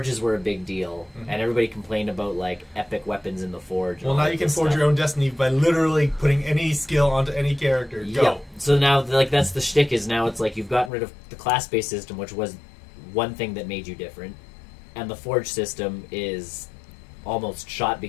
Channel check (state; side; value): drops out; right; at 10.9 s